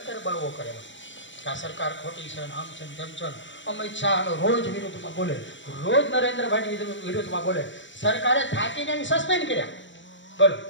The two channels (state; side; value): late; right; 0.54 ms